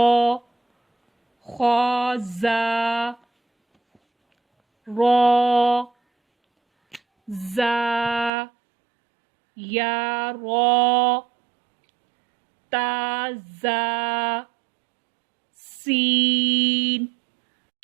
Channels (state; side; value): drops out; left; at 8.3 s